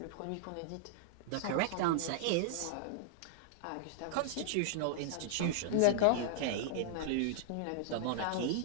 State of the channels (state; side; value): different; both; correlation -0.01